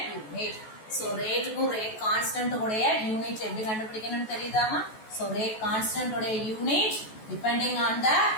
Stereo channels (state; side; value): late; right; 14 ms